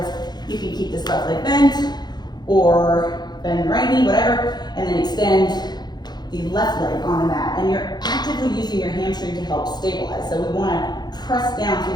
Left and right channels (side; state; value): right; late; 0.20 ms